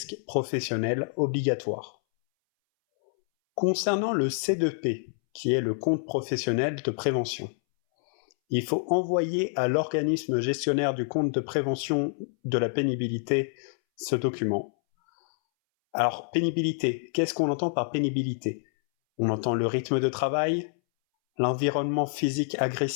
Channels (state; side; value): silent; right; 60 dB below the other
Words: professionnels obligatoire. Concernant le C2P, qui est le compte professionnel de prévention, il faut envoyer à l'organisme gestionnaire du compte de prévention de la pénibilité ce document. Alors, pénibilité, qu'est-ce qu'on entend par pénibilité? On entend le rythme de travail, l'environnement physique